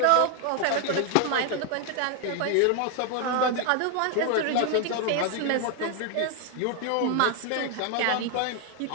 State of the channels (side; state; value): both; different; correlation 0.01